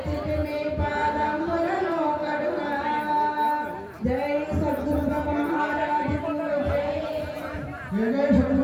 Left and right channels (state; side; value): identical; both; correlation 1.00